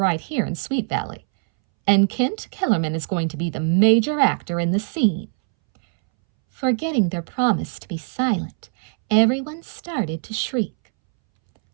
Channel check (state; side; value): silent; left; 64 dB below the other